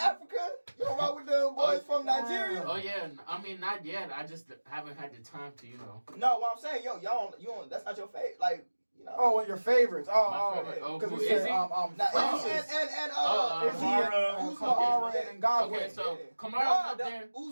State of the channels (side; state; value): both; inverted; correlation -1.00